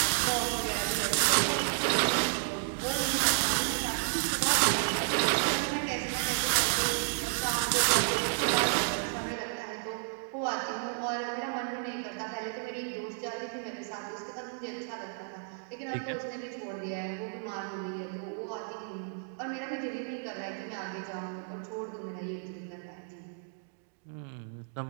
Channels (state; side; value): silent; left; digital silence